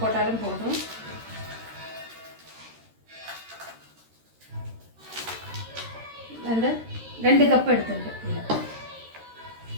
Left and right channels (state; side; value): late; left; 13 ms